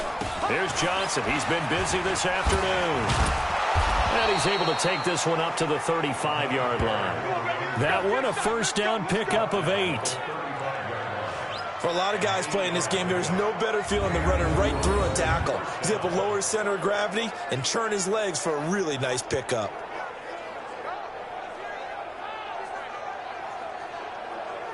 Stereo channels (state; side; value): identical; both; correlation 1.00